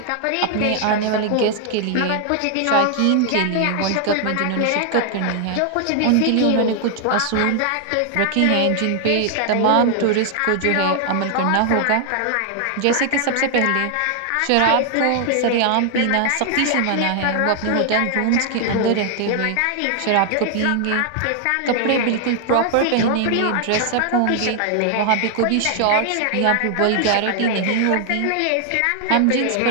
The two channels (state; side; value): different; both; correlation 0.00